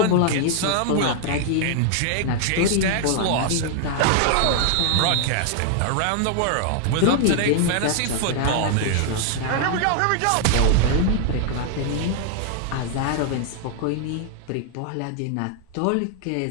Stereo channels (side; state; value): both; different; correlation 0.00